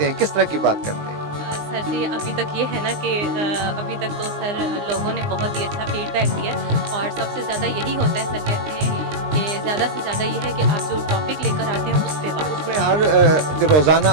हैं, किस तरह की बात करते हैं? सर जी, अभी तक ये है ना कि अभी तक तो सर लोगों ने बहुत ही अच्छा फीडबैक दिया और सबसे ज़्यादा यही होता है, सर कहते हैं कि ज़्यादा से ज़्यादा ये है कि आप जो टॉपिक लेकर आते हैं उस पे बात। उसमें हर रोज़ाना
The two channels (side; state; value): left; late; 19 ms